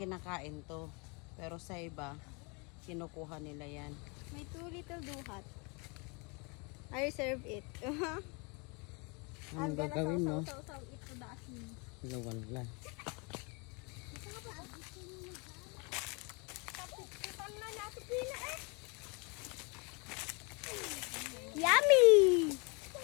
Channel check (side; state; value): right; quieter; 31.4 dB